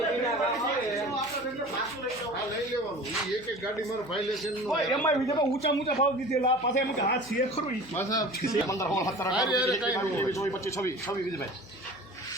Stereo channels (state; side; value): noise; left; hum, 22 dB below the sound